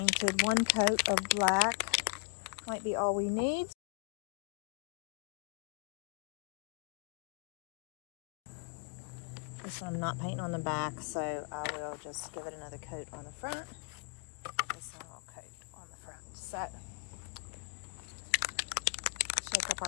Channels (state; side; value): quieter; right; 32.8 dB